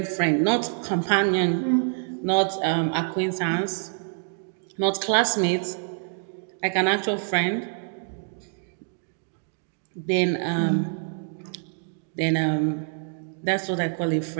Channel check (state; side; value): silent; left; digital silence